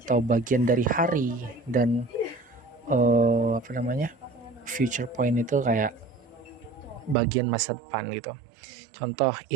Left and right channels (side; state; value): left; drops out; at 7.2 s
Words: bagian dari hari, dan future point itu kayak bagian masa depan gitu. Contoh,